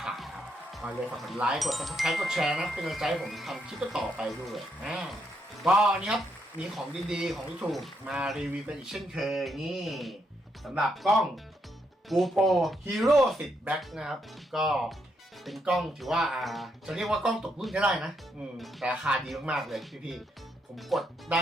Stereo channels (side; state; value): both; normal; correlation 0.78